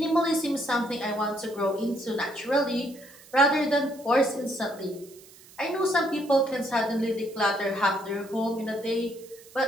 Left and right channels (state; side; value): noise; right; hiss, 22 dB below the sound